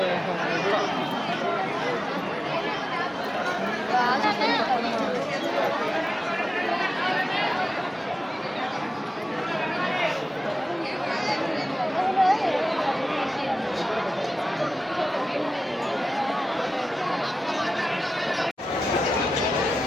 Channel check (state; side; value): normal; both; correlation 0.94